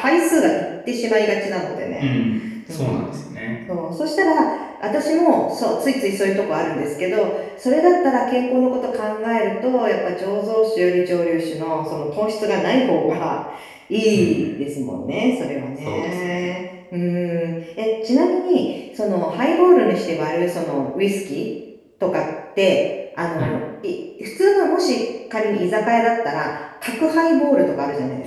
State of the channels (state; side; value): identical; both; correlation 1.00